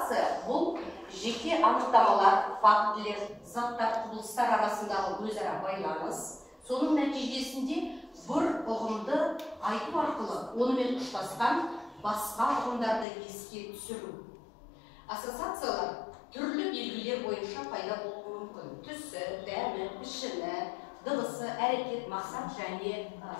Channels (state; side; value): drops out; right; at 13.1 s